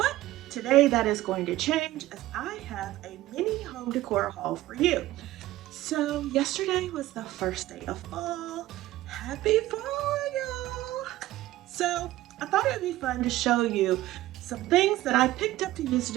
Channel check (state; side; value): quieter; left; 16.0 dB